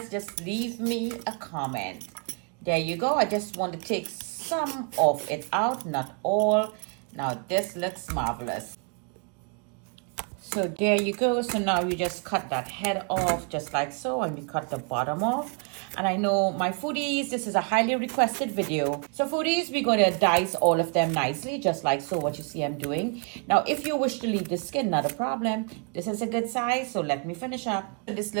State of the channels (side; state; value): left; quieter; 38.5 dB